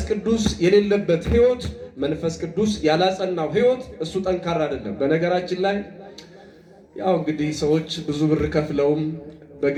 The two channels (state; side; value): identical; both; correlation 1.00